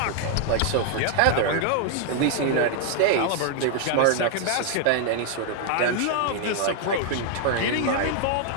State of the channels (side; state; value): both; different; correlation 0.00